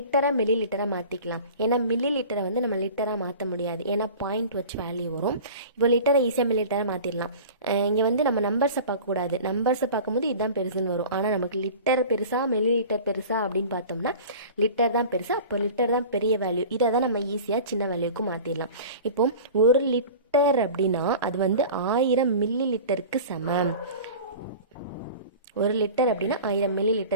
மில்லி லிட்டராக மாற்றிக்கலாம். ஏன்னா மில்லி லிட்டரை வந்து நம்ம லிட்டராக மாற்ற முடியாது, ஏன்னா பாயிண்ட் வச்சு வேல்யூ வரும். இப்போ லிட்டரை ஈஸியாக மில்லி லிட்டராக மாற்றிடலாம். இங்கே வந்து நம்ம நம்பர்ஸை பார்க்கக்கூடாது, நம்பர்ஸை பார்க்கும்போது இதுதான் பெருசுன்னு வரும். ஆனால் நமக்கு லிட்டர் பெருசா மில்லி லிட்டர் பெருசா அப்படின்னு பார்த்தோம்னா லிட்டர் தான் பெருசா, அப்போ லிட்டர் தான் பெரிய வேல்யூ. இதை தான் நம்ம ஈஸியாக சின்ன வேல்யூக்கு மாற்றிடலாம். இப்போ 1 லிட்டர் அப்படின்னா அது வந்து 1000 மில்லி லிட்டருக்கு சமம். 1 லிட்டர் அப்படின்னா 1000 மில்லி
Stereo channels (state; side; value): inverted; both; correlation -0.38